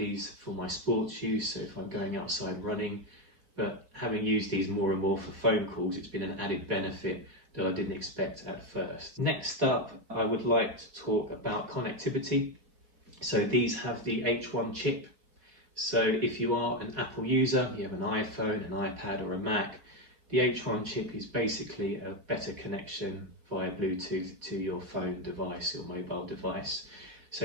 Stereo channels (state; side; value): late; left; 4.2 ms